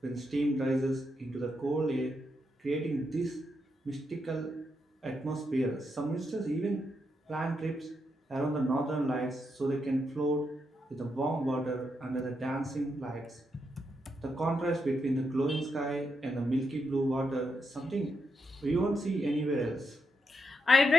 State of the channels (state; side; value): normal; both; correlation 0.82